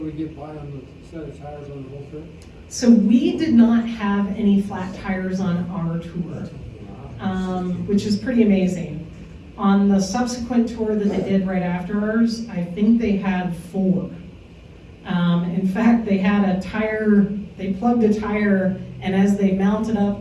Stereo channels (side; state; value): both; identical; correlation 1.00